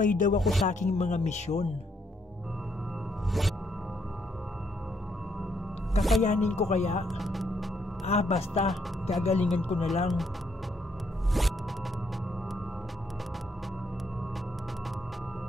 daw ako sa aking mga misyon. Kakayanin ko kaya? Basta, gagalingan ko na lang.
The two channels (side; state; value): both; normal; correlation 0.73